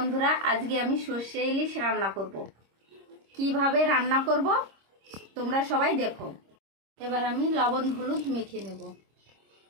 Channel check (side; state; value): left; late; 26 ms